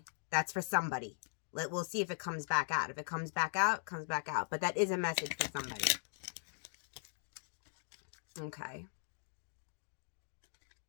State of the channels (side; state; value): right; silent; digital silence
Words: That's for somebody. We'll see if it comes back out. If it comes back out, comes back out. But that is a message for somebody. Okay.